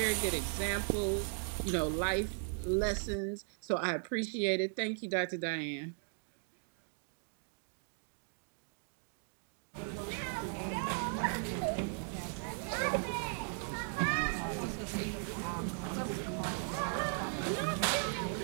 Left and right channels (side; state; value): left; silent; 53 dB below the other